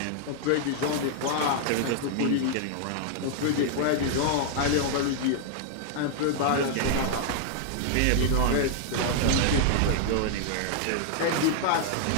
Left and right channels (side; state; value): both; different; correlation -0.01